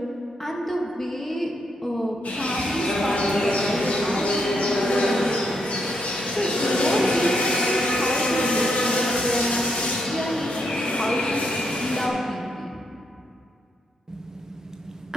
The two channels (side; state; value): both; normal; correlation 0.78